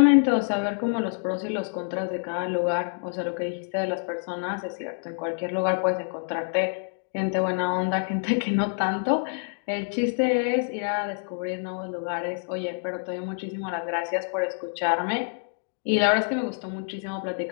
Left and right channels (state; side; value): silent; right; 60 dB below the other